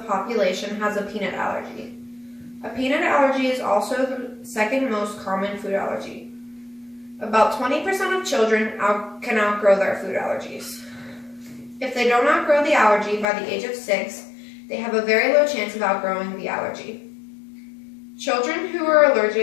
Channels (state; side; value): drops out; right; at 13.2 s